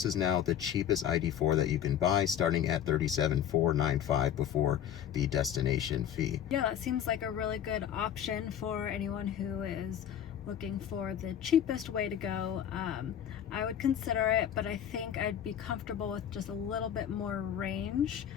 is now the cheapest ID.4 that you can buy, starting at $37,495 before the destination fee. Yeah, that seems like a really good option for anyone who is looking for the cheapest way to go. I would consider it, but I think I'd be comfortable with just a little bit more range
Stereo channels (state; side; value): quieter; right; 9.7 dB